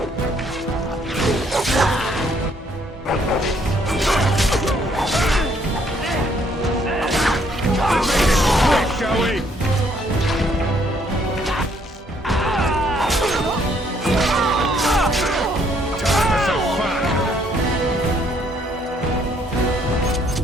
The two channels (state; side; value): normal; both; correlation 0.67